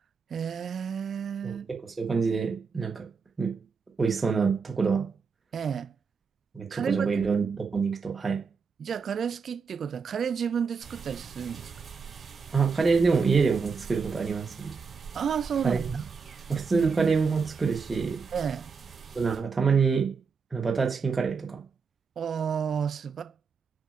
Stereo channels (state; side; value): quieter; left; 5.3 dB